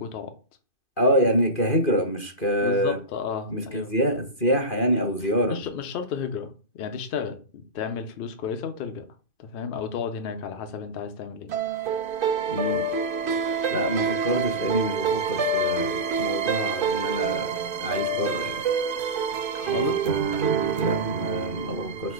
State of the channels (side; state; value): right; late; 2.6 ms